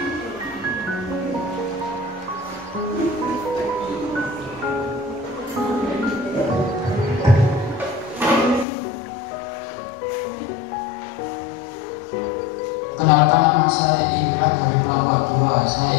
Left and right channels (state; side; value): drops out; right; at 8.7 s